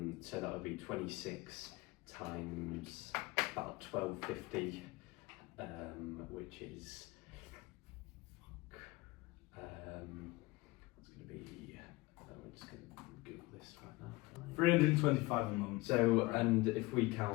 So that would be 26 times about 12.50, which is it's going to be. We're just going to Google this right now. 325 a month. So, and if we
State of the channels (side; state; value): right; quieter; 21.8 dB